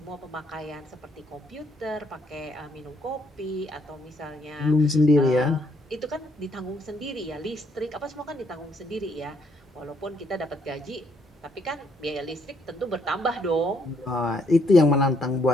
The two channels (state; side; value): normal; both; correlation 0.70